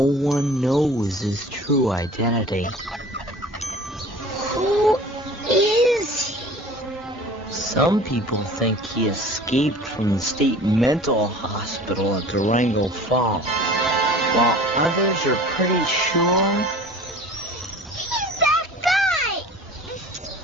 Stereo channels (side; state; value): both; normal; correlation 0.43